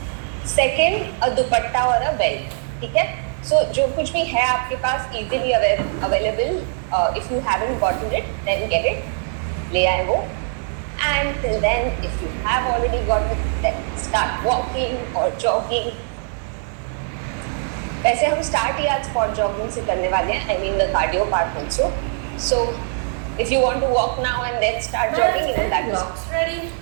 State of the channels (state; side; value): silent; left; 64 dB below the other